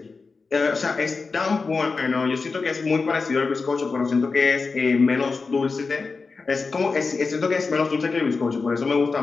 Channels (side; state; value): right; quieter; 4.4 dB